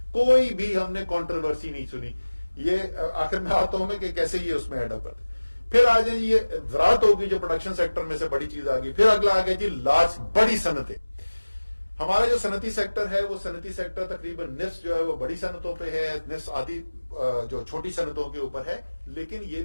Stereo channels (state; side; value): inverted; both; correlation -1.00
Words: کوئی بھی ہم نے کنٹروورسی نہیں سنی. یہ آخر میں آتا ہوں میں کہ کیسے یہ اس میں ایڈ اپ کرتے. پھر آ جائیں یہ زراعت ہوگی جو پروڈکشن سیکٹر میں سے بڑی چیز آ گئی. پھر اگلا آ گیا جی لارج, بڑی صنعتیں. ہمارا جو صنعتی سیکٹر ہے وہ صنعتی سیکٹر تقریباً نصف جو ہے وہ بڑی صنعتوں پہ ہے, نصف آدھی جو چھوٹی صنعتوں کے اوپر ہے. لیکن یہ